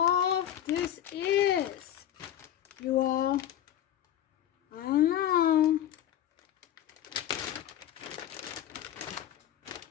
this is, you all. I don't know.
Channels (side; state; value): right; quieter; 11.4 dB